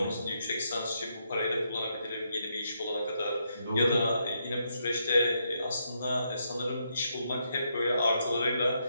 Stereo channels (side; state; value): both; inverted; correlation -0.79